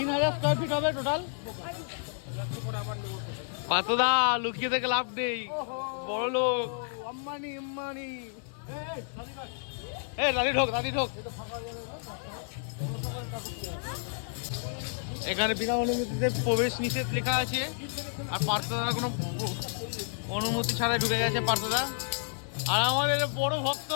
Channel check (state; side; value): silent; right; 57 dB below the other